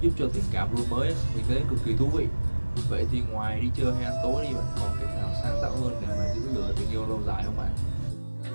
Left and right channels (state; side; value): inverted; both; correlation -1.00